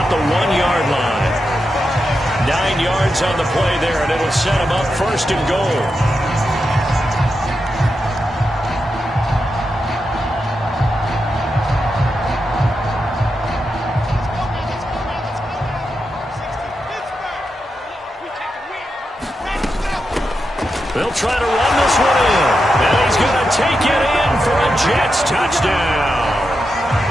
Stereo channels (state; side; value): normal; both; correlation 0.87